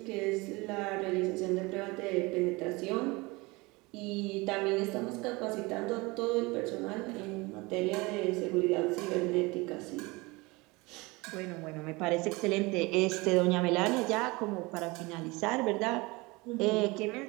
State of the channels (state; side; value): quieter; left; 24.2 dB